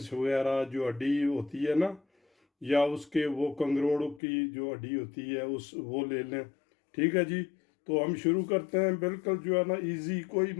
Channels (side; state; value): right; drops out; at 4.2 s